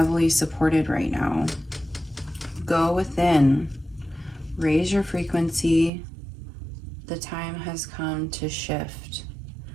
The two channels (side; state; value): left; drops out; at 5.9 s